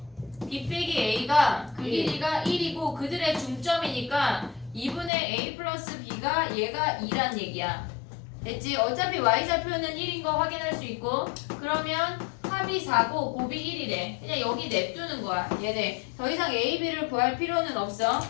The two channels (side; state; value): right; drops out; at 5.1 s